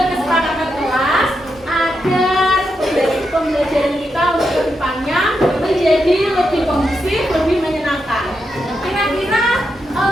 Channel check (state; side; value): normal; both; correlation 0.84